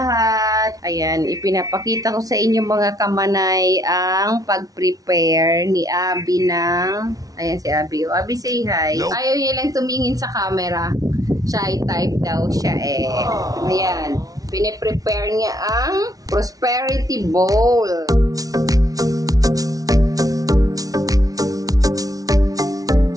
Ayan, ipinapakita ko sa inyo mga kamanay ang pag-prepare ni Abby ng... Ayan si Abby. Abby, say hi. Nope. Ayaw niya lang tumingin sa camera. Shy type daw siya eh. Ayan. Pine-prepare niya ang prosperity bowl.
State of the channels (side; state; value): left; late; 0.18 ms